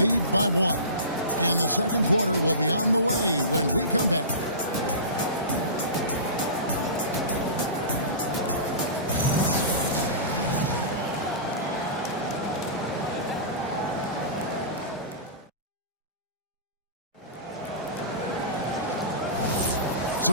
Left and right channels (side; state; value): both; inverted; correlation -0.31